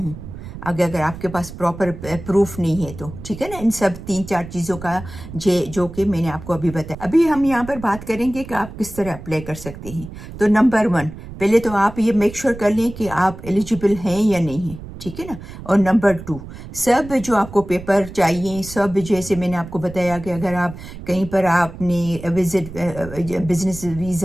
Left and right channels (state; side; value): noise; right; rumble, 13 dB below the sound